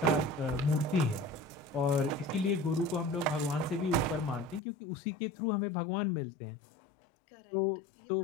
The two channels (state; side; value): drops out; right; at 4.6 s